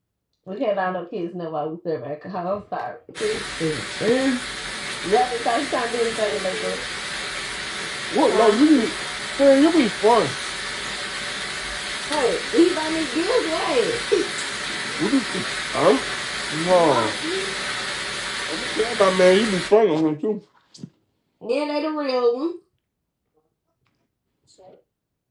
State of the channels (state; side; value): identical; both; correlation 1.00